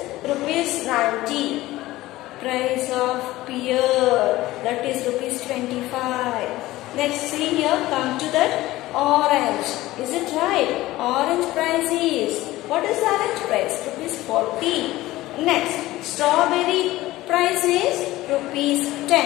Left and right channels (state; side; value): quieter; right; 17.2 dB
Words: rupees 90. Price of pear, that is rupees 25. Next, see here, come to that orange. Is it right? Orange price is, what is the orange price? Rupees 40. Next, strawberry price is rupees